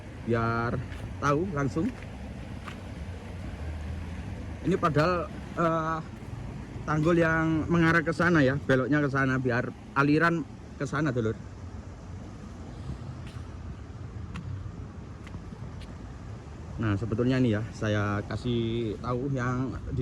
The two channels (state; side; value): identical; both; correlation 1.00